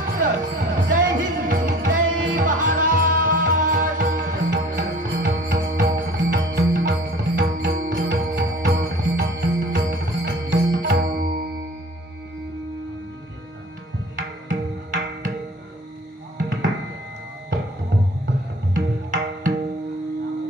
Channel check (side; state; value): both; normal; correlation 0.47